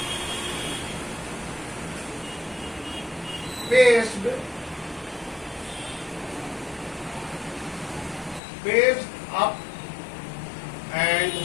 Paced up and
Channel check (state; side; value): drops out; right; at 8.4 s